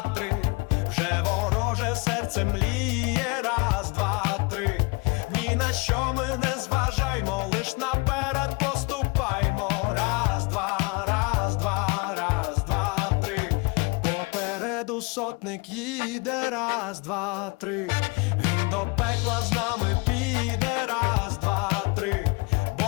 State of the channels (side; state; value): right; quieter; 28.1 dB